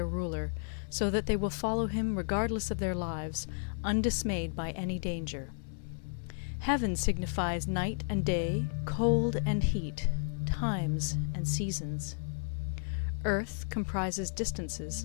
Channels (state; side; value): silent; right; 56 dB below the other